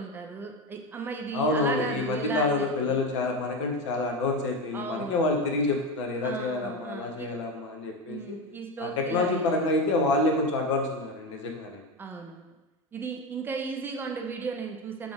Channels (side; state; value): both; normal; correlation 0.18